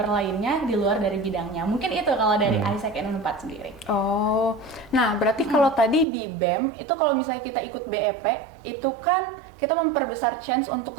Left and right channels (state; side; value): drops out; left; at 6.1 s